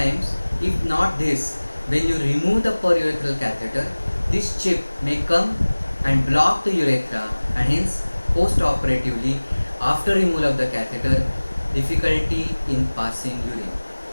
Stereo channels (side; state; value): both; inverted; correlation -1.00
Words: if not this, when you remove the perurethral catheter, this chip may come and block the urethra, and hence post-operatively after removal of the catheter, difficulty in passing urine.